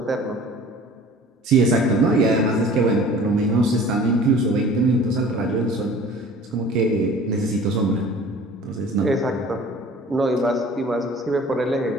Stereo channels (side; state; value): both; normal; correlation 0.46